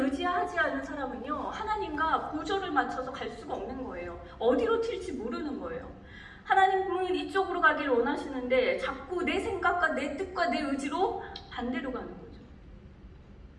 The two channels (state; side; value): identical; both; correlation 1.00